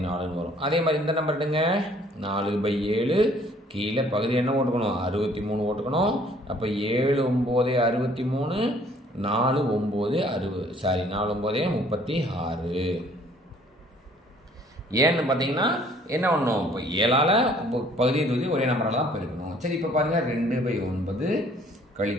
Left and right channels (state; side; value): normal; both; correlation 0.58